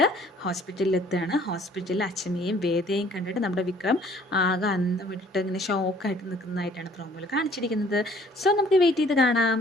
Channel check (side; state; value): both; normal; correlation 0.57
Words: ഹോസ്പിറ്റലിൽ എത്തുകയാണ്. ഹോസ്പിറ്റലിൽ അച്ഛമ്മയെയും വേദയെയും കണ്ടിട്ട് നമ്മുടെ വിക്രം ആകെ അന്തം വിട്ടിട്ട് ഇങ്ങനെ ഷോക്കായിട്ട് നിൽക്കുന്നതായിട്ടാണ് പ്രോമോയിൽ കാണിച്ചിരിക്കുന്നത്. സോ നമുക്ക് വെയിറ്റ് ചെയ്ത് കാണാം